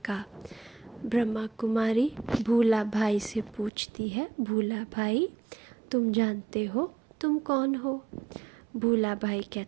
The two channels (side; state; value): left; drops out; at 3.7 s